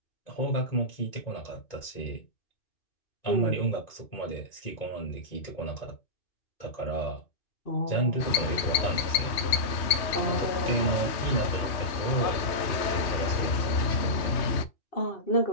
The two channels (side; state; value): right; late; 3.1 ms